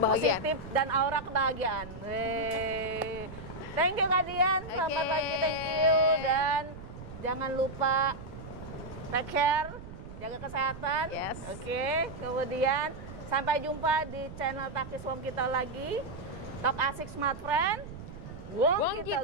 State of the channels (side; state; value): right; noise; rumble, 13 dB below the sound